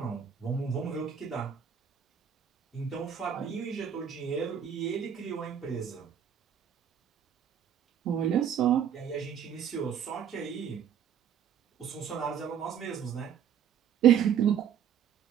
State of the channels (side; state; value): left; quieter; 8.5 dB